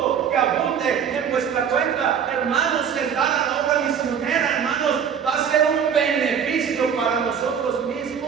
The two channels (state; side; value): quieter; left; 7.7 dB